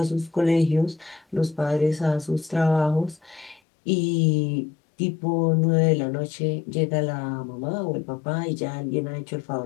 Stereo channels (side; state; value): right; drops out; at 3.6 s